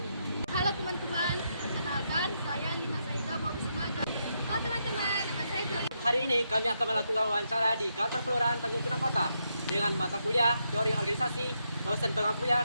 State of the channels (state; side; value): inverted; both; correlation -0.81